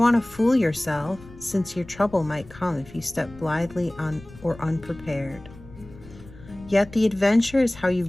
want to fool yourself, since your trouble might come if you step blithely or unprepared. Yet the adventure is how you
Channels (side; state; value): left; noise; rumble, 20 dB below the sound